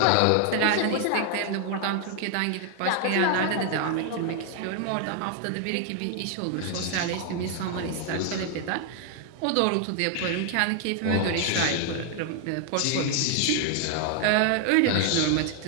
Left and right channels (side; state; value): both; different; correlation 0.00